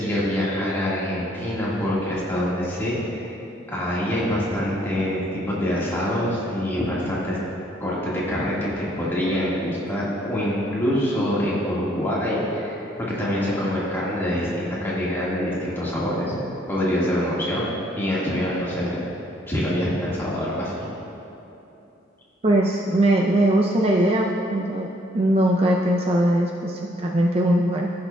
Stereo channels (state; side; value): normal; both; correlation 0.66